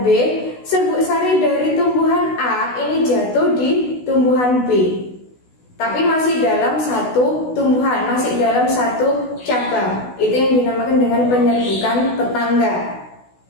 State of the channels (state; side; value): late; right; 16 ms